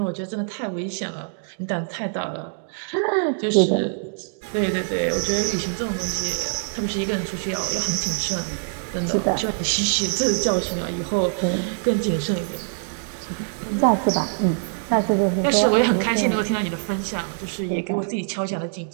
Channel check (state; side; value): silent; left; digital silence